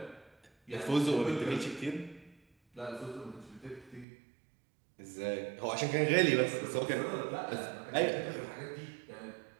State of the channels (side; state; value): left; drops out; at 4.0 s